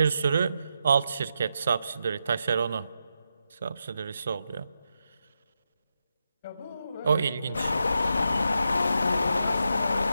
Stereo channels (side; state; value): both; inverted; correlation -0.85